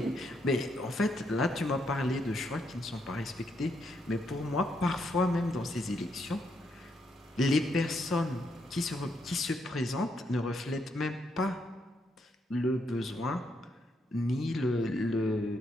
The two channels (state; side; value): normal; both; correlation 0.77